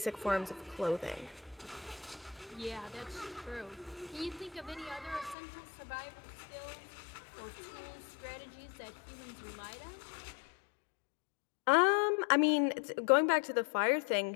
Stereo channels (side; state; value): right; drops out; at 5.4 s